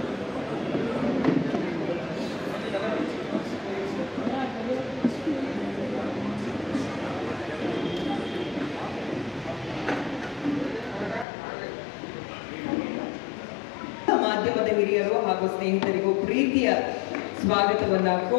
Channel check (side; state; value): right; drops out; at 11.2 s